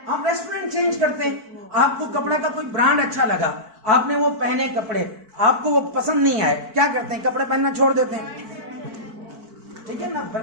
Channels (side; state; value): left; late; 4.5 ms